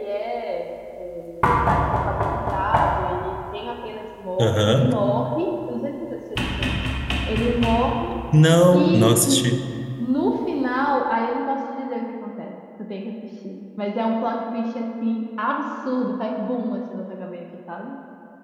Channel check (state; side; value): identical; both; correlation 1.00